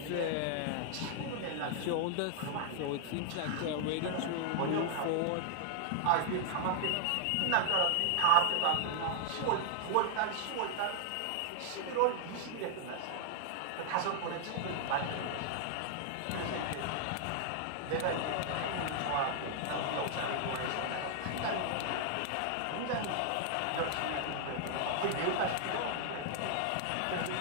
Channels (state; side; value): different; both; correlation 0.00